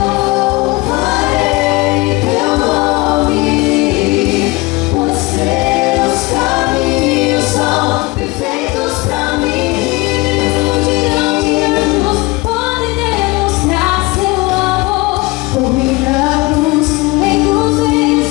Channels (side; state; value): right; quieter; 23.0 dB